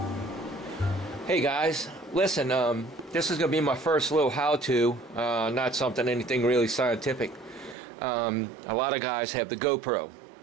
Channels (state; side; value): drops out; left; at 7.8 s